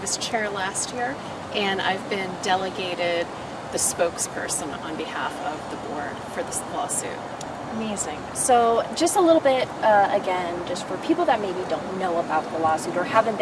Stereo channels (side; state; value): both; identical; correlation 1.00